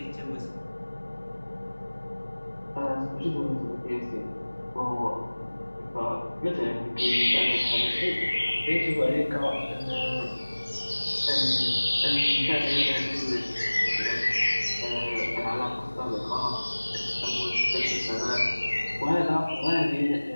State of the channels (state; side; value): inverted; both; correlation -1.00